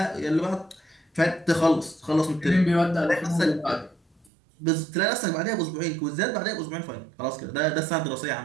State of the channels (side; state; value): left; drops out; at 4.3 s